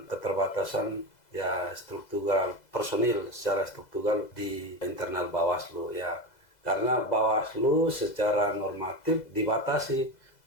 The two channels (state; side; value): late; right; 2.0 ms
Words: keterbatasan ya struktural personil secara struktural di internal Bawaslu ya. Karena Bawaslu secara normatif dibatasi